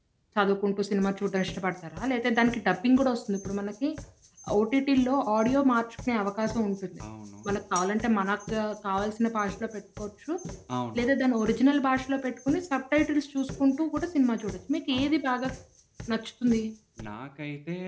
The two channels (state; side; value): identical; both; correlation 1.00